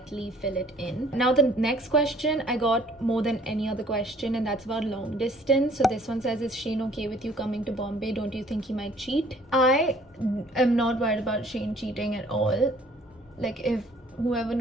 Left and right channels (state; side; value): normal; both; correlation 0.57